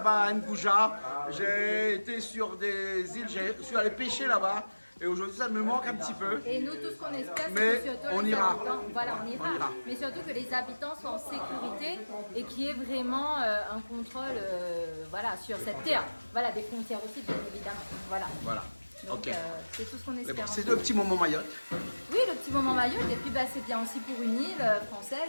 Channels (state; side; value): inverted; both; correlation -1.00